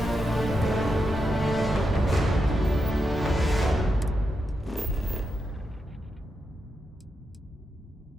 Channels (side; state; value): both; normal; correlation 0.86